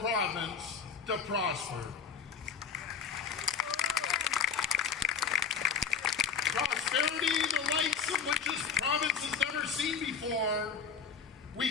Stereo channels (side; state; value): right; quieter; 6.4 dB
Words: to prosper. Prosperity, the likes of which this province has never seen before.